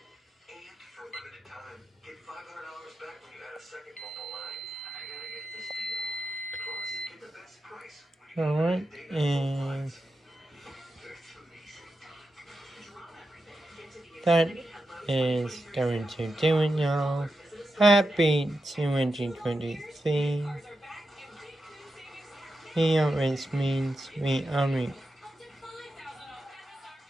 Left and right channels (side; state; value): both; normal; correlation 0.89